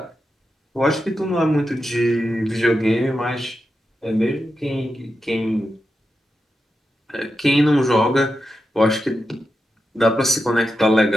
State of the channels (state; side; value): normal; both; correlation 0.89